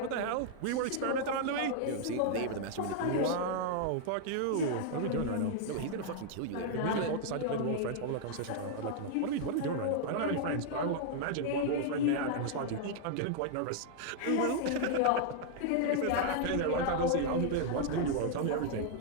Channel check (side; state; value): both; different; correlation -0.01